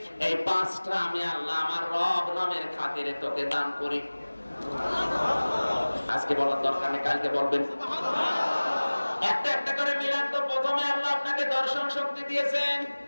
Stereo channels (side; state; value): both; inverted; correlation -1.00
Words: এই 5টা আমি আল্লাহ আমার রব নামের খাতিরে তোকে দান করি। আজকে বলার দরকার নেই, কালকে বলবেন। একটা একটা করে মিলান তো। প্রথমে আল্লাহ আপনাকে দর্শন শক্তি দিয়েছেন।